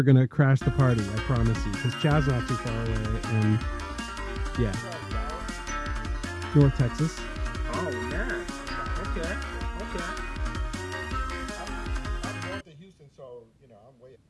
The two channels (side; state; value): both; identical; correlation 1.00